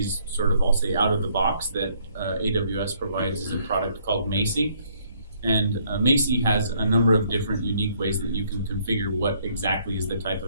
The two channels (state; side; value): inverted; both; correlation -0.66